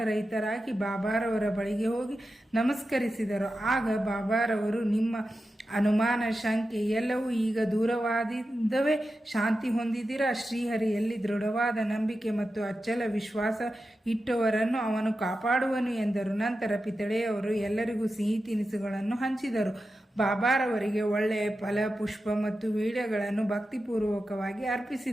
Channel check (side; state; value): both; normal; correlation 0.91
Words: ಬಾಬಾರವರ ಬಳಿಗೆ ಹೋಗಿ ನಮಸ್ಕರಿಸಿದರು. ಆಗ ಬಾಬಾರವರು, ನಿಮ್ಮ ಅನುಮಾನ, ಶಂಕೆ ಎಲ್ಲವೂ ಈಗ ದೂರವಾದಿದ್ದವೇ? ಶಾಂತಿ ಹೊಂದಿದ್ದೀರಾ? ಶ್ರೀಹರಿಯಲ್ಲಿ ದೃಢವಾದ ನಂಬಿಕೆ ಮತ್ತು ಅಚ್ಚಲ ವಿಶ್ವಾಸ ಇಟ್ಟವರನ್ನು ಅವನು ಕಾಪಾಡುವನು ಎಂದರು. ನಂತರ ಪಿತಳೆಯವರು ಎಲ್ಲರಿಗೂ ಸಿಹಿ ತಿನಿಸುಗಳನ್ನು ಹಂಚಿದರು. ಬಾಬಾರವರಿಗೆ ಒಳ್ಳೆಯ ಫಲ, ಪುಷ್ಪ ಮತ್ತು ವೀಳ್ಯಗಳನ್ನು ಭಕ್ತಿಪೂರ್ವಕವಾಗಿ